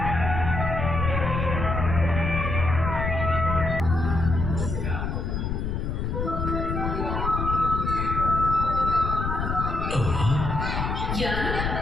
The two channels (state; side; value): noise; left; rumble, 2 dB below the sound